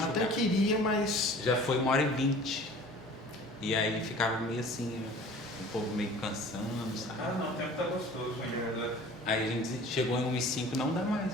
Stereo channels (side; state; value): both; normal; correlation 0.45